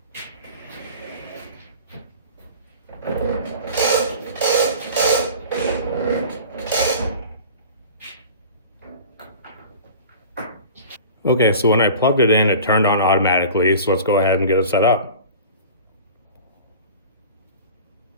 Okay, so when I plugged it in, it turned on automatically. So let's go ahead and get it set up.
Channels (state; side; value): inverted; both; correlation -0.40